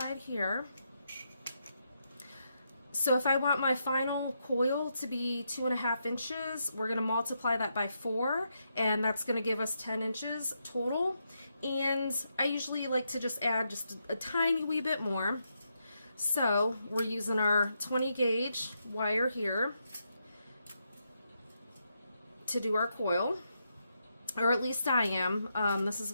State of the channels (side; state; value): both; inverted; correlation -0.82